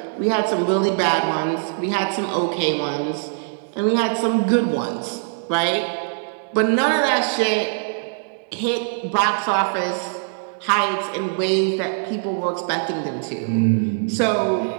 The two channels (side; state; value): left; silent; digital silence